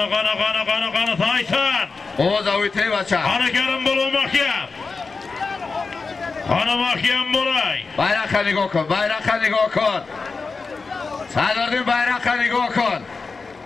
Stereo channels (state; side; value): quieter; right; 4.4 dB